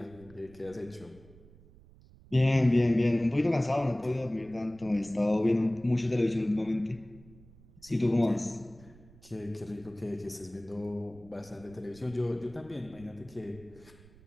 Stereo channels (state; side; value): noise; right; rumble, 23 dB below the sound